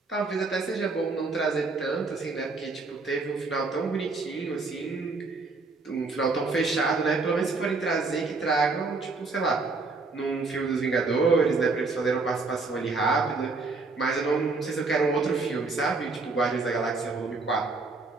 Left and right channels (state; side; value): quieter; left; 3.8 dB